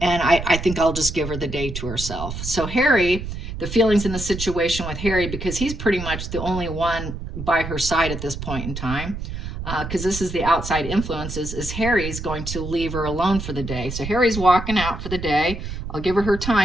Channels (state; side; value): noise; right; rumble, 7 dB below the sound